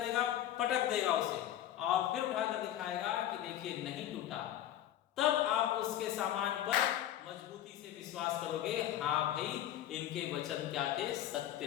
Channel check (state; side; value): quieter; right; 12.0 dB